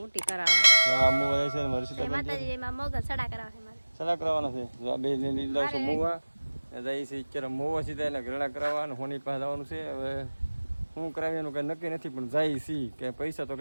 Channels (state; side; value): inverted; both; correlation -1.00